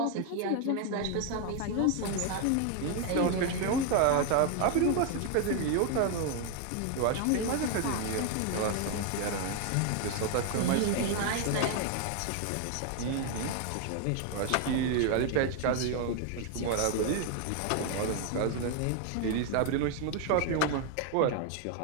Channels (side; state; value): both; different; correlation 0.00